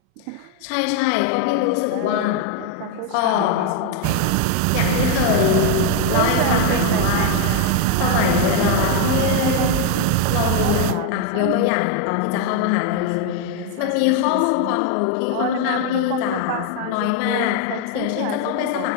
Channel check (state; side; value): different; both; correlation 0.01